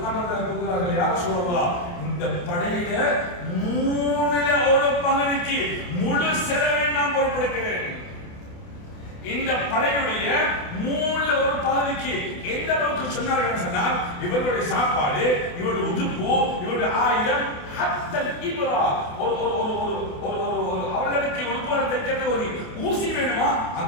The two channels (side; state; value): right; late; 28 ms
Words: ரலியல்லாஹு கூறுகிறார்கள், யார சொல்லலாம், இந்த படையில 1/3 பகுதிக்கு முழு செலவை நான் பொறுப்பெடுக்கிறேன். இந்த படையுடைய 1/3 பகுதிக்கு எந்த அளவுக்கு சொன்னார்கள் சொன்னால், இவர்களுடைய சாப்பாடு, இவருடைய உடுப்பு, இவருடைய ஆயுதம், ஹத்தல் இப்ரா, அவர்களுக்கு உடுப்பு தைக்கிறது ஒரு ஊசி வேணுமா,